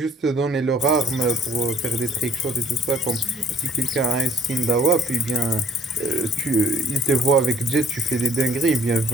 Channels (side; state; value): both; normal; correlation 0.58